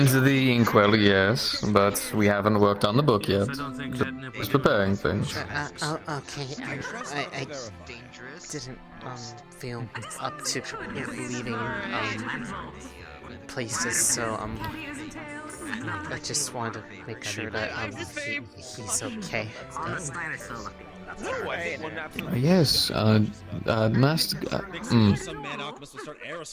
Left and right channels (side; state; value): both; identical; correlation 1.00